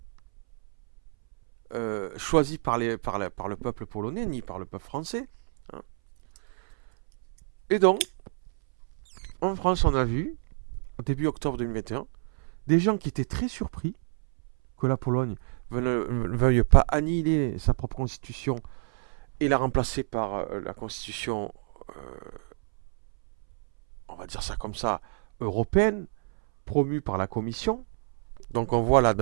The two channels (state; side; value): silent; left; 59 dB below the other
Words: choisie par le peuple polonais ni par le peuple français. Hein. Et donc, en France, on a vu, au début octobre 2021, des gens qui étaient très surpris que la Pologne ne veuille pas annihiler sa propre constitution et la remplacer par la constitution, on va dire ça comme ça, européenne, promue par la Commission. Donc on voit là dans